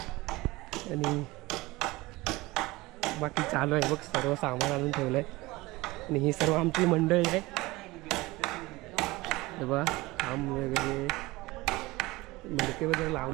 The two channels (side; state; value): left; quieter; 20.9 dB